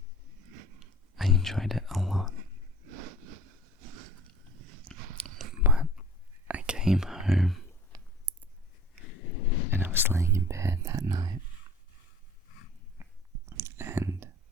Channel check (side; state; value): both; normal; correlation 0.47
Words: enjoyed it a lot. But I came home and I was laying in bed that night, and